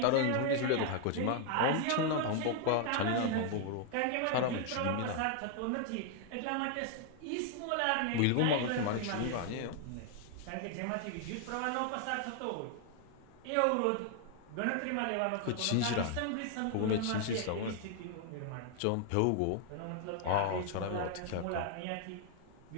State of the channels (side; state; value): both; different; correlation 0.00